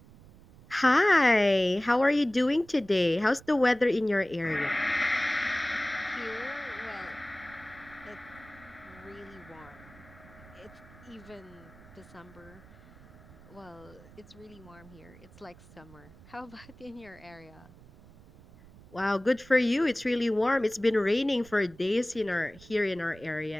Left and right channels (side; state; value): right; noise; rumble, 22 dB below the sound